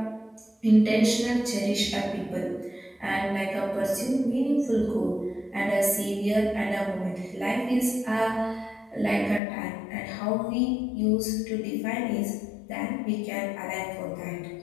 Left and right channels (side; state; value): right; drops out; at 9.4 s